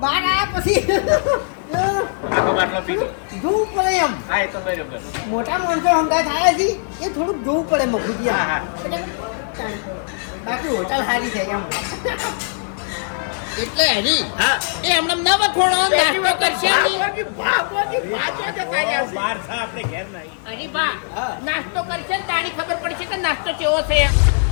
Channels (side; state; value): right; silent; 66 dB below the other